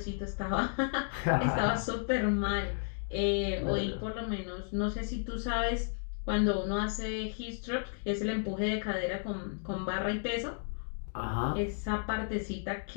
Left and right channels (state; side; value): silent; right; digital silence